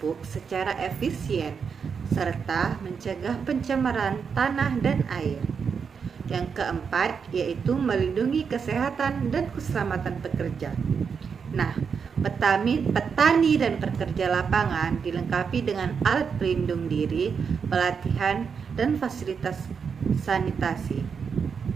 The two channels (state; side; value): quieter; left; 6.2 dB